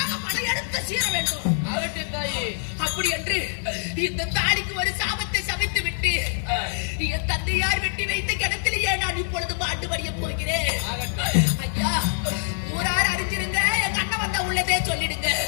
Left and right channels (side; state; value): right; silent; digital silence